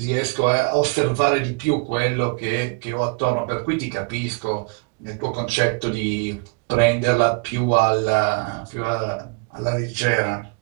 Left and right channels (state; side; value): quieter; left; 30.8 dB